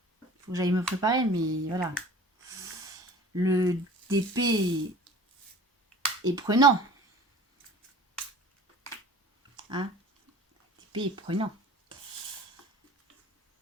faut que j'aille me préparer, mais voilà. Le DP est prenant. Hein, DP est prenant.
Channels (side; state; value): both; normal; correlation 0.44